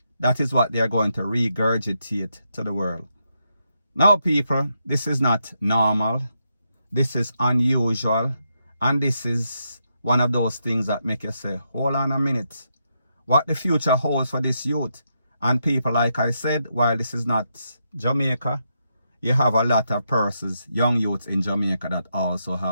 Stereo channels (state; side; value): inverted; both; correlation -0.82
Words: That is what they are going to regurgitate to the world. Now people, this is not normal. This is unusual. And this is one of those things that make you say, hold on a minute. What the future holds for this youth. And people, like I said, while this is not Jamaica, you have a lot of persons, young youths in Jamaica that also